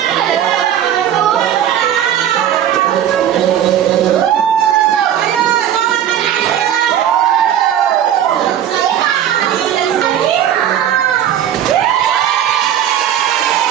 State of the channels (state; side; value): quieter; left; 10.3 dB